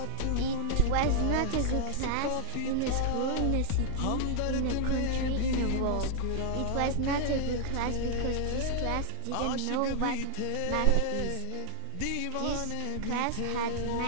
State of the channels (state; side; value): different; both; correlation -0.01